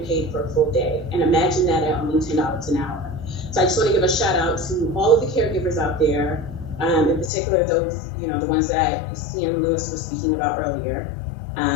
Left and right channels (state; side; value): drops out; right; at 7.3 s